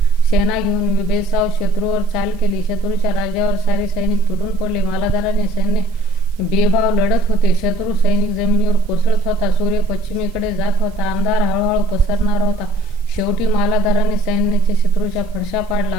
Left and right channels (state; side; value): noise; right; hiss, 29 dB below the sound